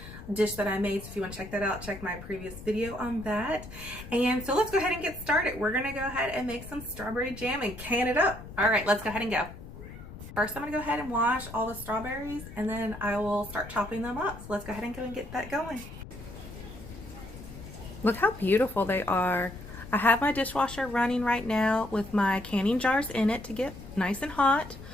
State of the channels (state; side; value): noise; left; rumble, 14 dB below the sound